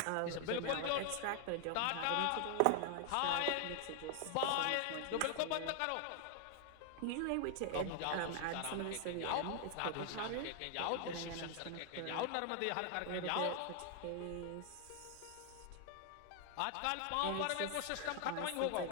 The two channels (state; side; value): different; both; correlation 0.00